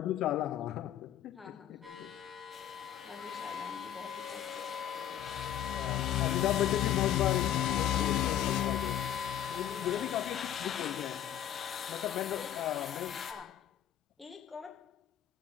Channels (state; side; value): quieter; right; 10.8 dB